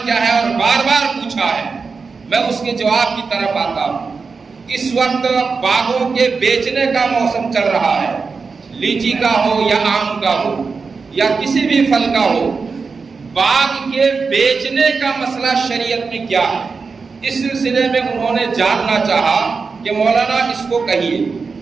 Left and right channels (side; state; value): left; quieter; 4.8 dB